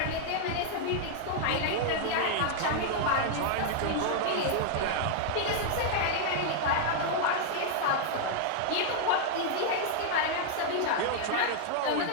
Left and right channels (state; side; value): different; both; correlation -0.01